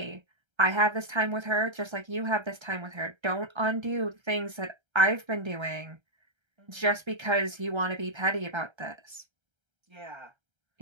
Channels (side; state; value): left; late; 1.3 ms